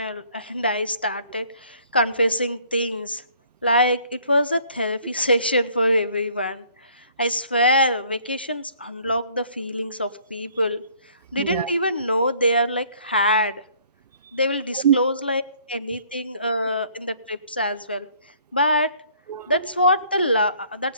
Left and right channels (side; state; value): both; inverted; correlation -0.59